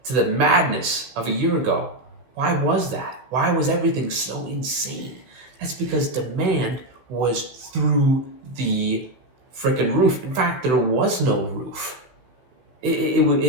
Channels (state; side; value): late; left; 15 ms